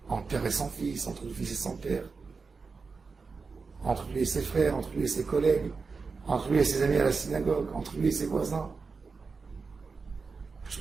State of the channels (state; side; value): quieter; left; 4.7 dB